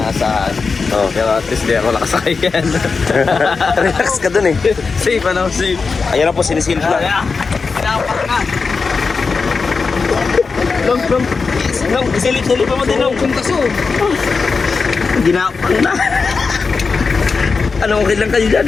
Oh. Pero at least di ako nakasakay yan. Relax ka dun eh. Safe, ano? Safe. Ayan na po, sinisilip na. Pinapak na. Long, isilip mo din, Long. Kung kaso. Ginapang na. Ano, okay lang kayo dyan?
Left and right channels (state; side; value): quieter; right; 4.7 dB